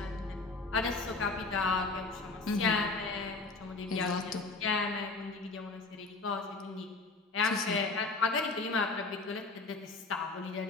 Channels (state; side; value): quieter; right; 3.6 dB